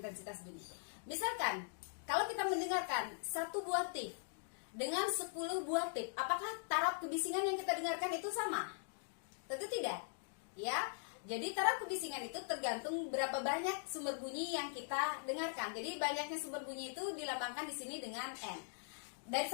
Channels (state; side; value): silent; right; digital silence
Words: bunyi. Misalkan, kalau kita mendengarkan 1 buah tip dengan 10 buah tip, apakah taraf kebisingan yang kita dengarkan itu sama? Tentu tidak. Ya. Jadi taraf kebisingan itu tergantung berapa banyak sumber bunyi yang kita dengarkan. Jadi banyaknya sumber bunyi itu dilambangkan di sini dengan N. Dari